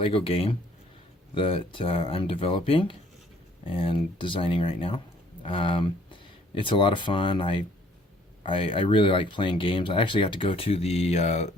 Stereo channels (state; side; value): normal; both; correlation 0.60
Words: game that I'm developing and designing right now. It's a lot of fun. I really like playing games. I actually got to go to the